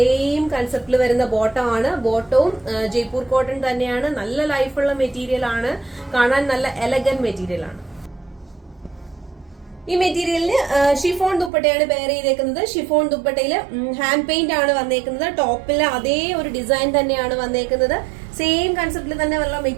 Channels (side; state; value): left; drops out; at 11.5 s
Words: കൺസെപ്റ്റിൽ വരുന്ന ബോട്ടം ആണ്. ബോട്ടവും ജയ്പൂർ കോട്ടൺ തന്നെയാണ്. നല്ല ലൈഫുള്ള മെറ്റീരിയൽ ആണ്. കാണാൻ നല്ല എലഗന്റ് മെറ്റീരിയൽ ആണ്. ഈ മെറ്റീരിയലിന് ഷിഫോൺ ദുപ്പട്ടയാണ് പെയർ ചെയ്തേക്കുന്നത്. ഷിഫോൺ ദുപ്പട്ടയിൽ ഹാൻഡ് പെയിന്റ് ആണ് വന്നേക്കുന്നത്. ടോപ്പിൽ അതേ ഒരു ഡിസൈൻ തന്നെയാണ് വന്നേക്കുന്നത്. സെയിം കൺസെപ്റ്റിൽ തന്നെ ഉള്ള